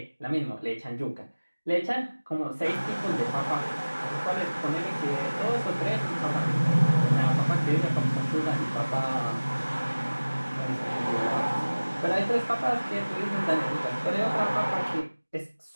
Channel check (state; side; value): inverted; both; correlation -1.00